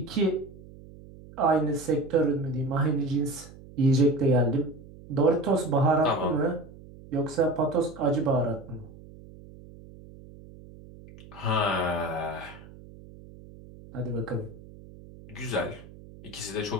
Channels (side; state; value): right; noise; hum, 19 dB below the sound